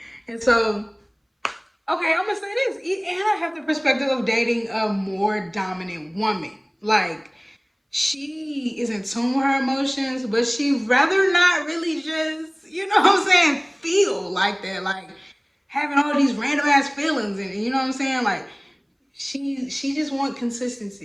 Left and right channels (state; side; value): identical; both; correlation 1.00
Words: And so, okay, I'm gonna say this, and I have the perspective of dating a more dominant woman. Like, she is in tune with her emotions, but she rather not really just, you know what I'm saying, feel like that. Like, having all these random ass feelings and you know what I'm saying? Like she just want